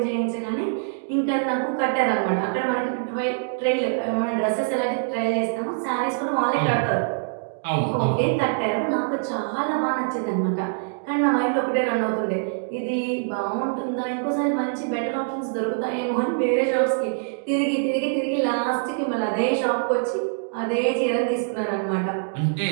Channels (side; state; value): left; silent; digital silence